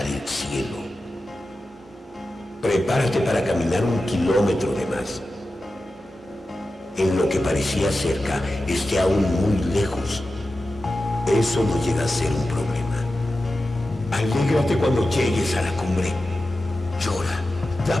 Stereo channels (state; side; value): normal; both; correlation 0.93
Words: el cielo. Prepárate para caminar 1 kilómetro de más. En lo que parecía cerca, esté aún muy lejos. Eso no llega a ser un problema. Alégrate cuando llegues a la cumbre. Llora, da